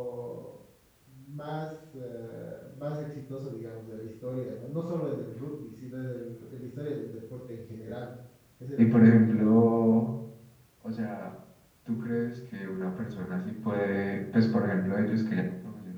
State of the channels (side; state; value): both; identical; correlation 1.00